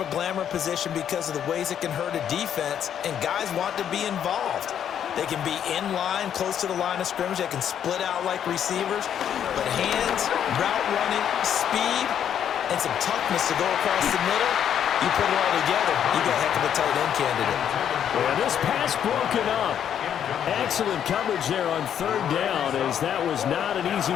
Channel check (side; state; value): right; quieter; 9.3 dB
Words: a glamour position because of the ways it can hurt a defense, and guys want to be involved. They can be in line, close to the line of scrimmage. They can split out like receivers. But hands, route running, speed, and some toughness to go across the middle, you put it all together, you got a heck of a tight end candidate. Well, this pass broken up. Excellent coverage there on 3rd down, as that was not an